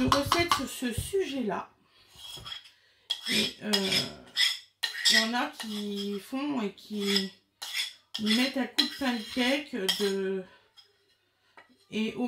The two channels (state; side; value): identical; both; correlation 1.00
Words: sur ce sujet-là. Et il y en a qui font et qui mettent un coup de pancake et